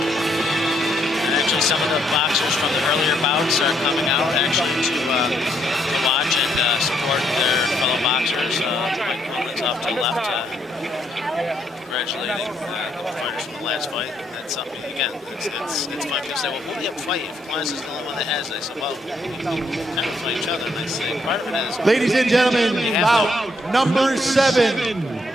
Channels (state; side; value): normal; both; correlation 0.73